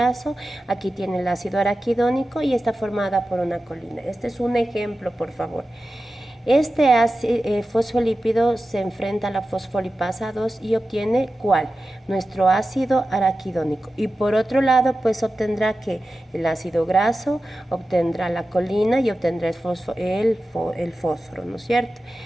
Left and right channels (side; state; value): both; normal; correlation 0.93